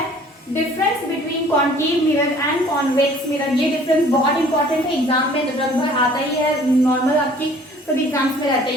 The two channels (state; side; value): normal; both; correlation 0.53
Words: difference between concave mirror and convex mirror. ये डिफरेंस बहुत इंपॉर्टेंट है, एग्जाम में लगभग आता ही है, नॉर्मल आपकी सभी एग्जाम्स में रहते